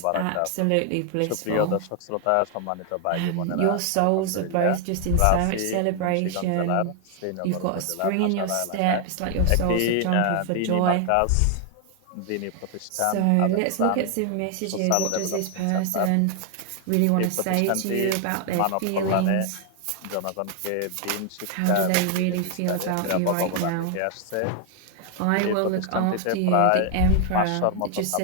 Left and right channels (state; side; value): different; both; correlation 0.00